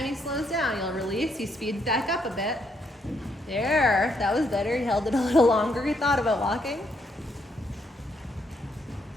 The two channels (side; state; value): both; normal; correlation 0.74